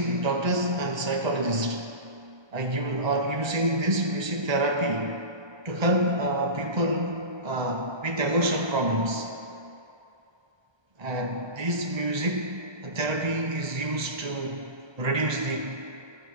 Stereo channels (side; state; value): left; late; 1.3 ms